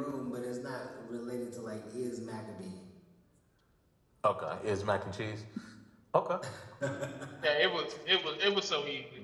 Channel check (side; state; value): both; identical; correlation 1.00